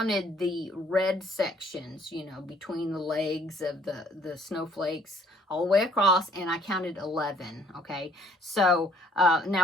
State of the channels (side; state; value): both; normal; correlation 0.61